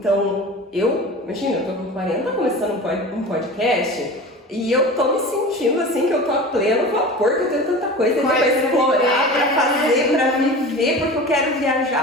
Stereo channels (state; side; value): normal; both; correlation 0.34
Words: imagina, eu tô com 40 começando um podcast e eu tô me sentindo assim que eu tô a pleno vapor, que eu tenho tanta coisa pra explorar, pra fazer, pra viver, porque eu quero